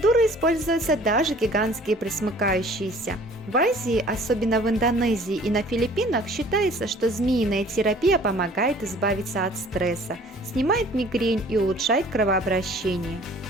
используются даже гигантские пресмыкающиеся. В Азии, особенно в Индонезии и на Филиппинах, считается, что змеиная терапия помогает избавиться от стресса, снимает мигрень и улучшает кровообращение.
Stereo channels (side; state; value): both; normal; correlation 0.51